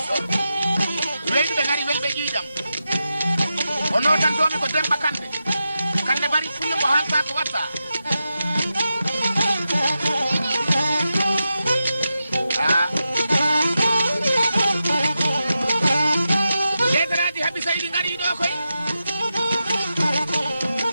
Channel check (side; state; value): both; inverted; correlation -0.89